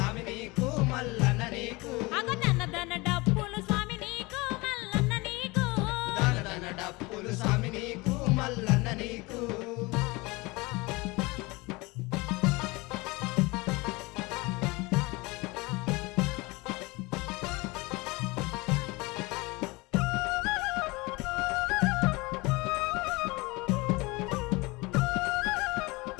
నీకు మల్లన్న నీకు అగదన డప్పులు స్వామి నీకు మల్లన్న నీకు దన డప్పులు స్వామి నీకు మల్లన్న నీకు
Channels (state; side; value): quieter; right; 24.2 dB